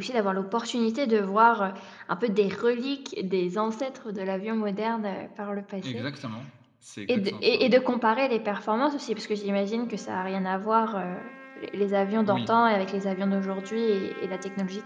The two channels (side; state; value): both; identical; correlation 1.00